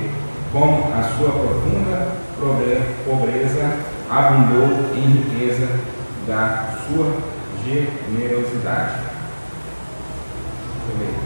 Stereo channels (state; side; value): inverted; both; correlation -1.00